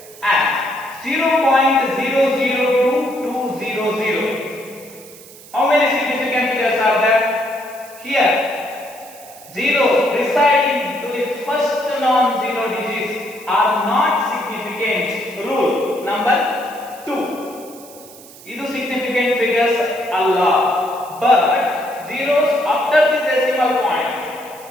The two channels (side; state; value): right; noise; hiss, 20 dB below the sound